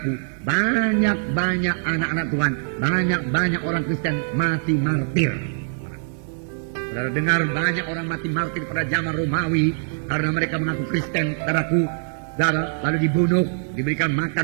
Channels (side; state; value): left; silent; digital silence